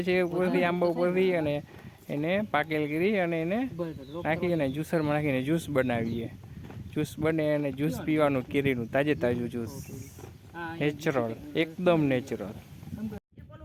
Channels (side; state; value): both; identical; correlation 1.00